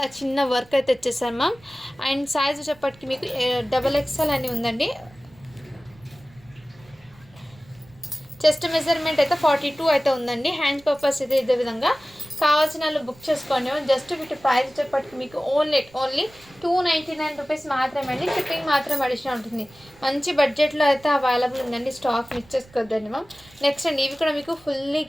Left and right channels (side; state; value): right; noise; rumble, 26 dB below the sound